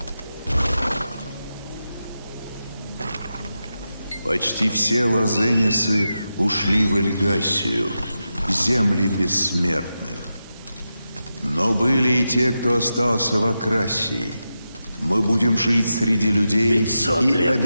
Почти все лазенисы ушли в Эльгасию, земли бессмертных. Но были и те, кто остался в Акрасии. Мы будем жить среди людей 500 и лет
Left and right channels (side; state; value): both; inverted; correlation -0.90